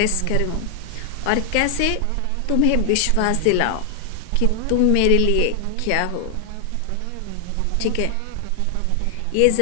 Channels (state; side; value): different; both; correlation 0.00